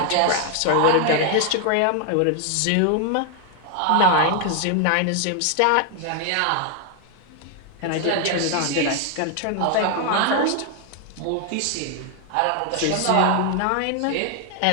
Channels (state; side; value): different; both; correlation 0.00